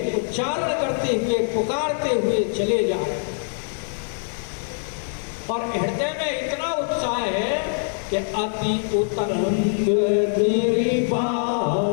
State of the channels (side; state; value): right; silent; digital silence